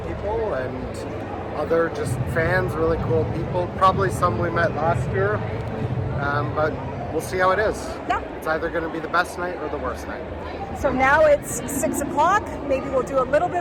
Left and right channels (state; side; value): identical; both; correlation 1.00